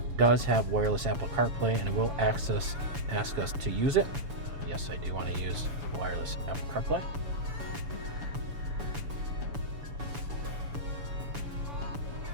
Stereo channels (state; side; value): late; left; 7.0 ms